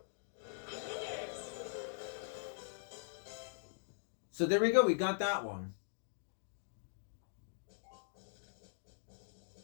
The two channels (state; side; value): silent; right; digital silence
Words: So there we go. We got that one.